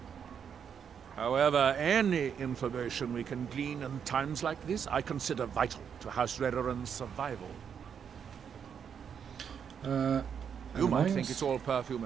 However, any information we can glean in times like this, I consider vital to House Redoran's survival. You might think it's all perfume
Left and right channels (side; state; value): left; quieter; 7.5 dB